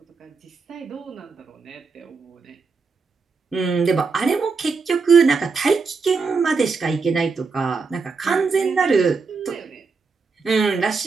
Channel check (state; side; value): quieter; left; 4.7 dB